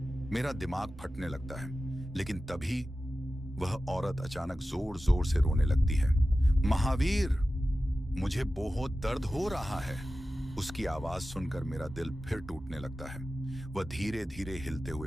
मेरा दिमाग फटने लगता है। लेकिन तभी वह औरत अचानक जोर जोर से रोने लगती है। महावीर, मुझे बहुत दर्द हो रहा है। उसकी आवाज सुनकर मेरा दिल फिर टूटने लगता है। वह धीरे धीरे हिलते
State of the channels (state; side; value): normal; both; correlation 0.94